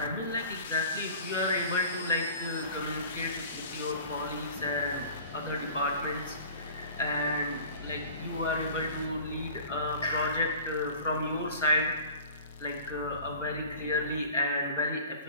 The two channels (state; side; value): inverted; both; correlation -0.43